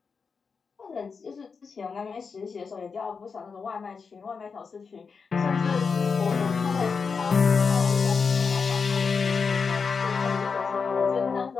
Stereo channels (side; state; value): right; quieter; 5.3 dB